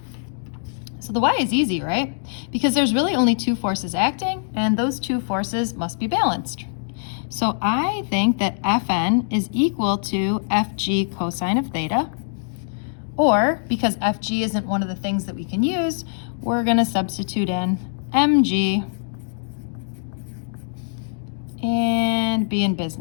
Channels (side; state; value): right; silent; digital silence